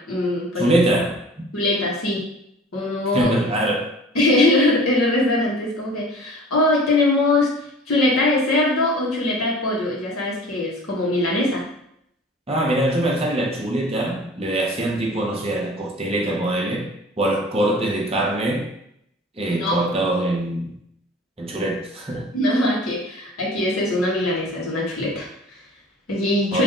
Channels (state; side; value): normal; both; correlation 0.44